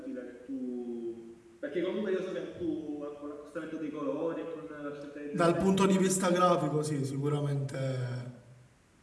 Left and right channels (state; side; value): identical; both; correlation 1.00